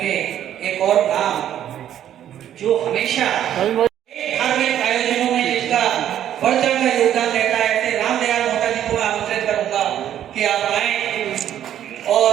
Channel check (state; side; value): quieter; left; 10.8 dB